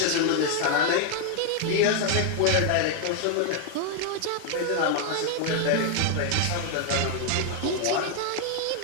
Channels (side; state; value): both; different; correlation 0.00